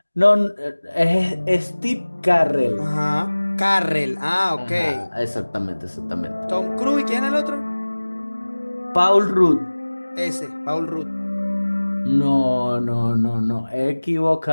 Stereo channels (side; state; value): both; inverted; correlation -1.00